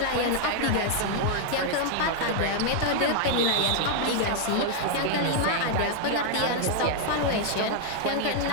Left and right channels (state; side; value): different; both; correlation 0.00